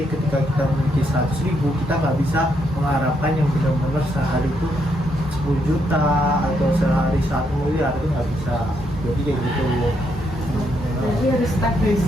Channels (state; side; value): normal; both; correlation 0.77